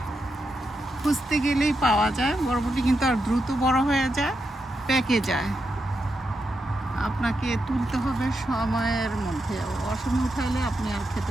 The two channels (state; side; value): normal; both; correlation 0.85